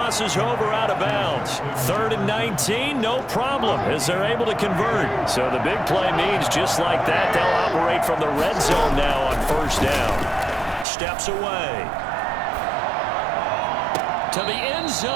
over out of bounds. 3rd and 19, no problem, as they're able to convert. So the big play means just like that, they'll operate from the red zone now on 1st down. Steps away to the end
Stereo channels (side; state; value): left; drops out; at 10.9 s